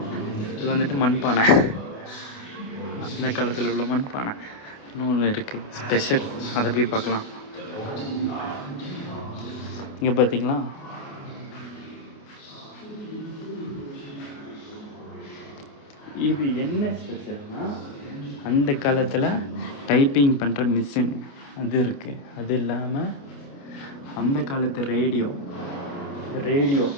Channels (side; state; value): right; late; 28 ms